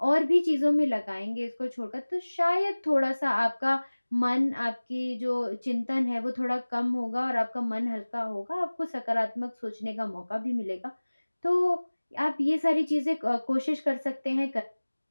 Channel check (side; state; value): both; inverted; correlation -1.00